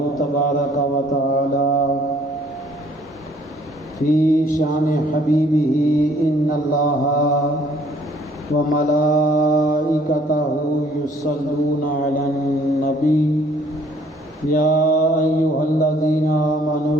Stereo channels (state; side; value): normal; both; correlation 0.60